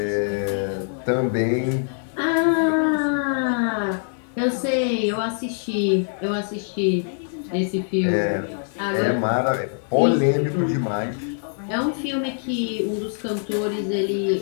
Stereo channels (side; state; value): right; silent; 63 dB below the other